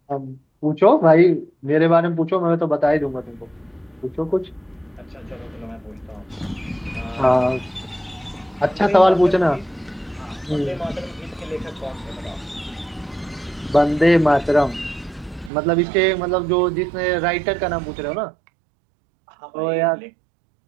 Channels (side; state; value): left; drops out; at 15.5 s